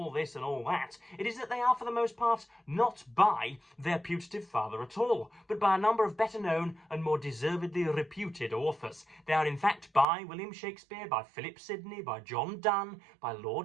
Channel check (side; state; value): left; drops out; at 10.1 s